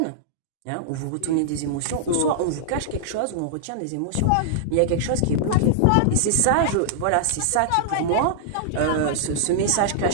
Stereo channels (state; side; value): different; both; correlation -0.01